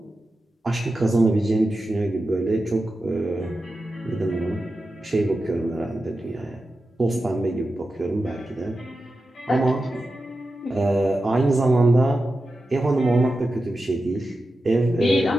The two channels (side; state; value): both; normal; correlation 0.91